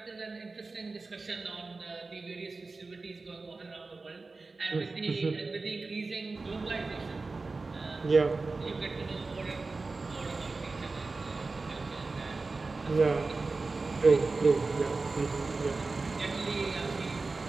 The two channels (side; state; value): left; quieter; 3.8 dB